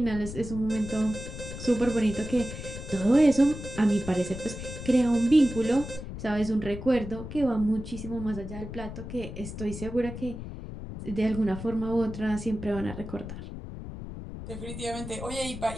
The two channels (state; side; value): noise; left; rumble, 9 dB below the sound